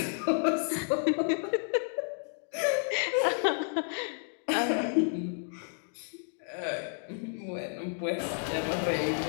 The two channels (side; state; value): right; silent; 57 dB below the other